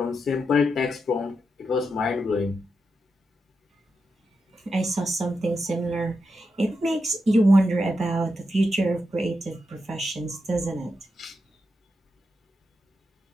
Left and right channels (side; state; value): both; normal; correlation 0.86